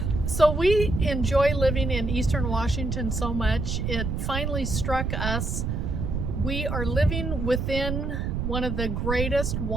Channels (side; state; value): right; noise; rumble, 2 dB below the sound